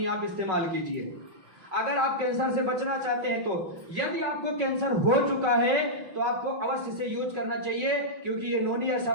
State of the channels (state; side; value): late; left; 5.4 ms